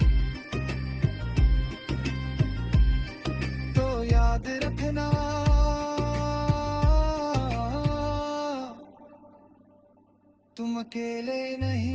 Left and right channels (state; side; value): identical; both; correlation 1.00